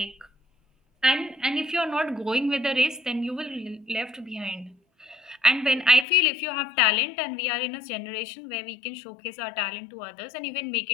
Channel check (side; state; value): right; drops out; at 6.1 s